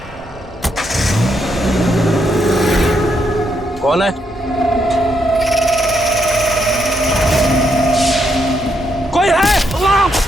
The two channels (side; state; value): both; normal; correlation 0.78